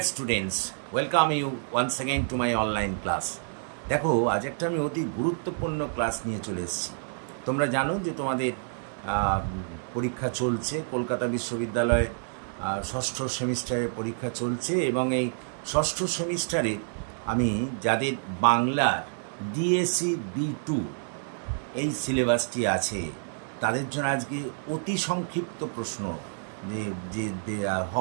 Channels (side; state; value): left; silent; 59 dB below the other